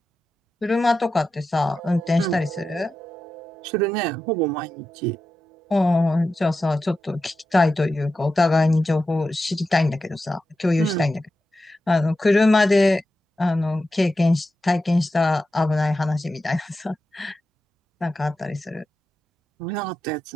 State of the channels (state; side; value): normal; both; correlation 0.91